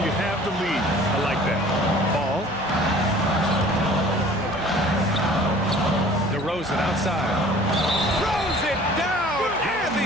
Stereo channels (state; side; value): noise; left; hum, 18 dB below the sound